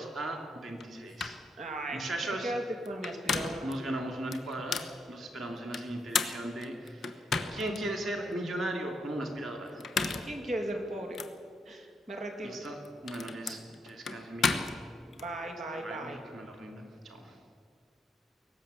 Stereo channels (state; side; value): normal; both; correlation 0.77